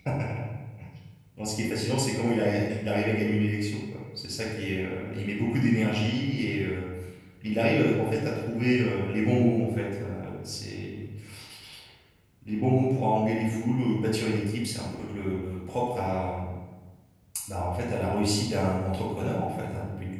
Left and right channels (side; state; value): both; identical; correlation 1.00